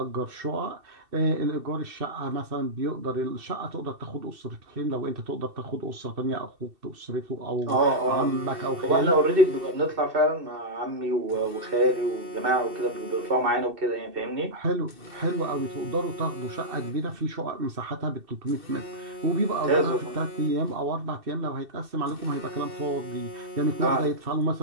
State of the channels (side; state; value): left; late; 2.7 ms